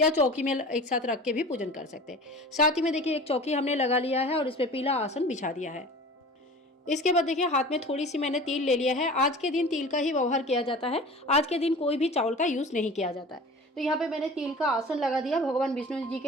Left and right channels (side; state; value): both; normal; correlation 0.39